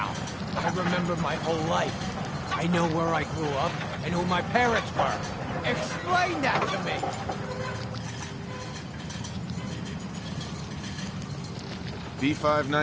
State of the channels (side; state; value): both; identical; correlation 1.00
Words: I remember my whole life. I know where I grew up and who my parents were. Explain that to me!